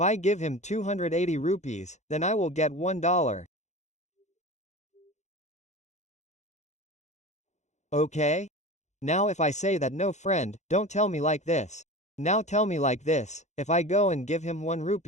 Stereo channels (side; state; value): right; late; 0.33 ms